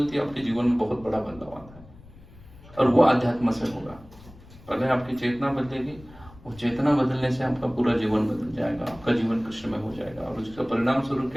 है, आपके जीवन में बहुत बड़ा बदलाव आता है। और वो अध्यात्म से होगा। पहले आपकी चेतना बदलेगी, वो चेतना बदलने से आपका पूरा जीवन बदल जाएगा, आपका जीवन कृष्ण में हो जाएगा। और उसका परिणाम स्वरूप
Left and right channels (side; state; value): left; noise; rumble, 21 dB below the sound